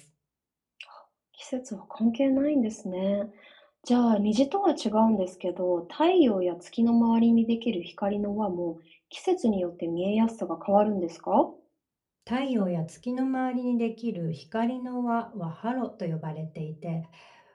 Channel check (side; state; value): both; identical; correlation 1.00